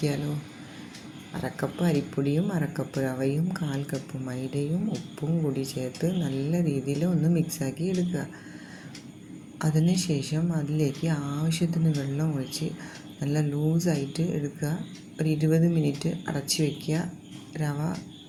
അരക്കപ്പ് അരിപ്പൊടിയും അരക്കപ്പ് റവയും 1/4 കപ്പ് മൈദയും ഉപ്പും കൂടി ചേർത്ത് നല്ല രീതിയിൽ ഒന്ന് മിക്സാക്കി എടുക്കുക. അതിനുശേഷം അതിലേക്ക് ആവശ്യത്തിന് വെള്ളം ഒഴിച്ച് നല്ല ലൂസായിട്ട് എടുക്കുക. ഒരു 20 മിനിറ്റ് അടച്ച് വയ്ക്കുക. റവ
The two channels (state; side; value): identical; both; correlation 1.00